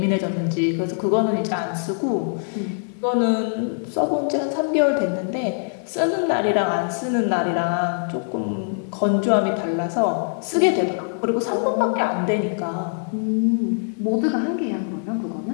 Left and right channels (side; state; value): right; silent; digital silence